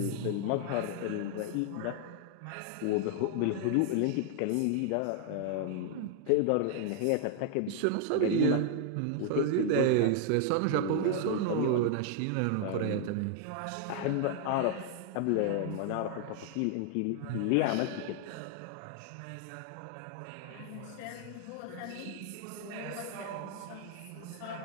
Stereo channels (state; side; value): different; both; correlation 0.00